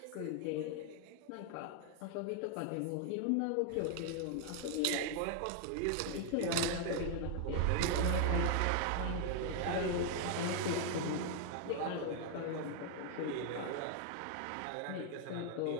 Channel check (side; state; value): both; different; correlation 0.00